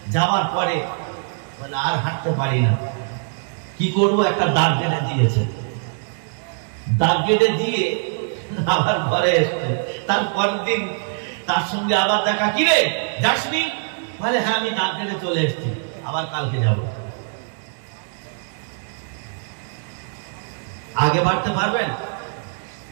যাওয়ার পরে বলে আর হাঁটতে পারি না, কি করবো? একটা দাগ কেটে দিয়েছে। দাগ কেটে দিয়ে আবার ঘরে এসছে। তারপর দিন তার সঙ্গে আবার দেখা, কি রে যাসনি? বলে হ্যাঁ আমি দাঁত কেটে চলে এসেছি, আবার কালকে যাব। আগে বাড়তে পারবেন?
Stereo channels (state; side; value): silent; left; digital silence